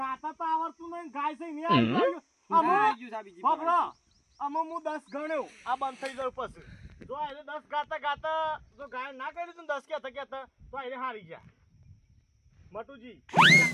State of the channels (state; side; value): identical; both; correlation 1.00